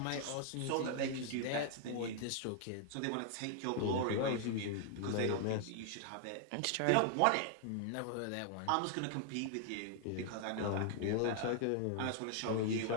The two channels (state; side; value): different; both; correlation 0.00